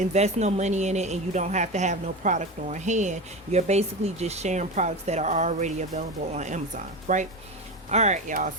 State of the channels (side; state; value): both; normal; correlation 0.23